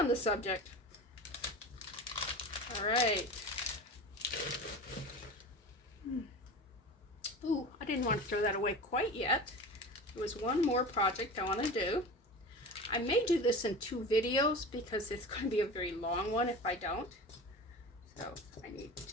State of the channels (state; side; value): normal; both; correlation 0.32